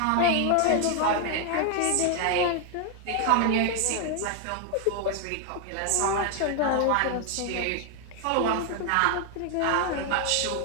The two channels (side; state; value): both; different; correlation 0.00